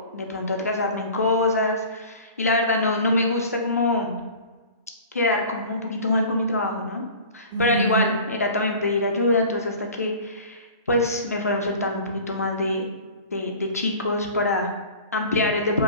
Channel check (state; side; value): inverted; both; correlation -0.41